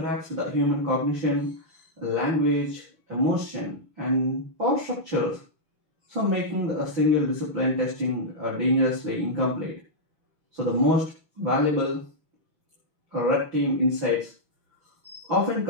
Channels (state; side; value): late; left; 6.1 ms